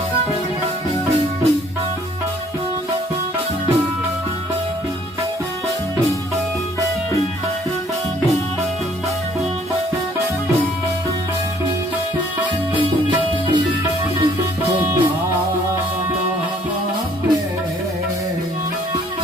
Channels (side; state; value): both; normal; correlation 0.60